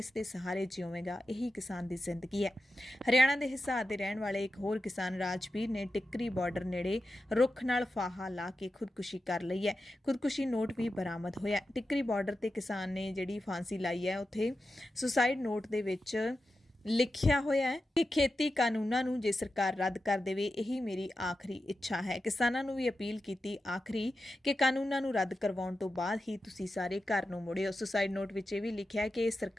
ਦੇ ਸਹਾਰੇ ਜਿਉਵੇਗਾ। ਇਹੀ ਕਿਸਾਨ ਦੀ ਜ਼ਿੰਦਗੀ ਹੈ। ਹਰਿਆਣਾ ਦੇ ਹਿਸਾਰ ਦੇ ਰਹਿਣ ਵਾਲੇ ਇੱਕ ਹੋਰ ਕਿਸਾਨ ਰਾਜਵੀਰ ਨੇ ਟਿੱਕਰੀ ਬਾਰਡਰ ਨੇੜੇ ਰੁੱਖ ਨਾਲ ਫਾਹਾ ਲਾ ਕੇ ਖੁਦਕੁਸ਼ੀ ਕਰ ਲਈ ਹੈ। ਖੁਦਕੁਸ਼ੀ ਨੋਟ ਵੀ ਬਰਾਮਦ ਹੋਇਆ। ਟਿੱਕਰੀ ਬਾਰਡਰ ਤੇ ਕਿਸਾਨ ਨੇ ਜਿਹੜੀ ਫਾਂਸੀ ਲਾਈ ਹੈ, ਉੱਥੇ ਸੁਸਾਈਡ ਨੋਟ ਦੇ ਵਿੱਚ ਲਿਖਿਆ ਹੋਇਆ ਹੈ ਕਿ ਖੇਤੀ ਕਾਨੂੰਨਾਂ ਨੂੰ ਜੇ ਸਰਕਾਰ ਰੱਦ ਕਰ ਦੇਵੇ, ਇਹੀ ਮੇਰੀ ਆਖਰੀ ਇੱਛਾ ਹੈ। ਕਿਸਾਨਾਂ ਨੂੰ ਵੀ ਅਪੀਲ ਕੀਤੀ ਆਖਰੀ ਕਿ ਕਾਨੂੰਨਾਂ ਨੂੰ ਰੱਦ ਕਰਵਾਉਣ ਤੋਂ ਬਾਅਦ ਹੀ ਤੁਸੀਂ ਸਾਰੇ ਘਰ ਨੂੰ ਮੁੜਿਓ। ਸੁਸਾਈਡ ਨੋਟ ਵਿੱਚ ਇਹ ਵੀ ਲਿਖਿਆ ਕਿ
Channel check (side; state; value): both; normal; correlation 0.91